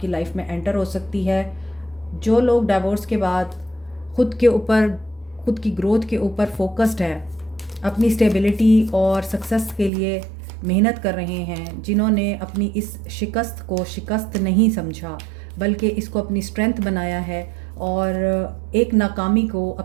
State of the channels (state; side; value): drops out; left; at 9.9 s